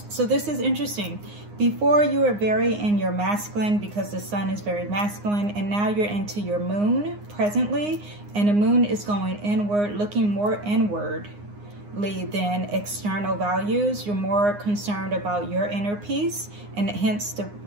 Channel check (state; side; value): late; left; 9.7 ms